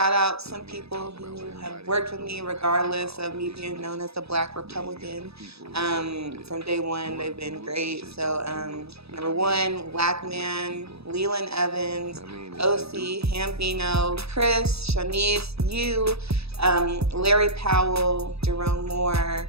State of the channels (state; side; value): late; left; 0.78 ms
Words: out some people who have worked with me regardless of me being known as the Black Republican. From day one, they've been great. So number 1, Black Man, Leland Evans, OC, Hambino, Chris, Shanice, you, Larry Powell, Jerome Moore.